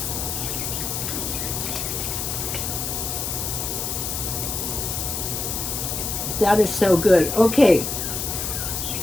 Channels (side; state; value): left; noise; hiss, 3 dB below the sound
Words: That is so good. Okay,